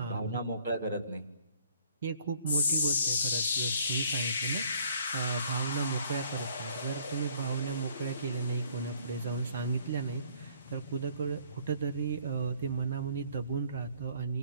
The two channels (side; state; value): both; inverted; correlation -0.60